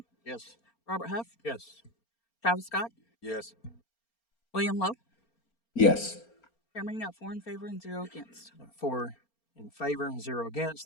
Yes. Robert Huff, Yes. Travis Scott, Yes. William Lowe. Yes. Chairman, you got 4 in favor and 0 against. 4 in favor, 0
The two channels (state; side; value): late; right; 4.3 ms